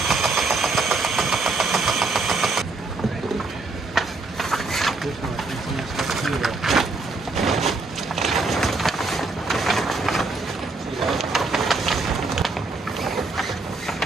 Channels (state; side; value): quieter; left; 3.6 dB